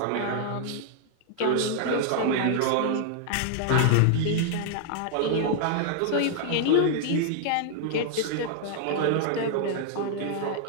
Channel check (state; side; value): different; both; correlation -0.01